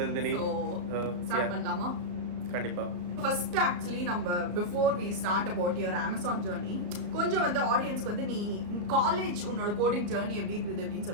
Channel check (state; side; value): late; left; 34 ms